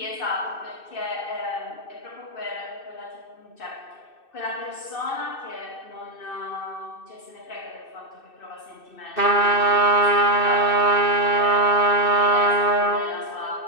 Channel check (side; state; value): right; late; 2.6 ms